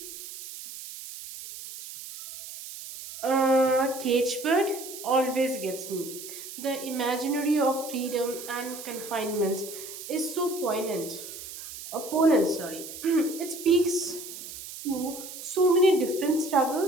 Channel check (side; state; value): right; noise; hiss, 12 dB below the sound